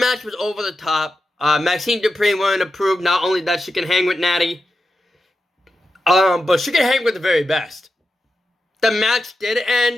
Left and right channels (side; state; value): both; normal; correlation 0.89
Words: was over the top. Maxine Dupri wanted to prove not only that she can hang with Natty, but she can hang with the very best. The match did